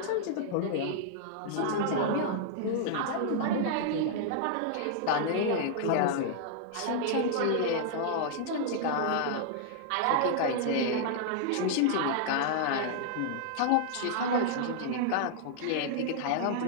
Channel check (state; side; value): different; both; correlation -0.01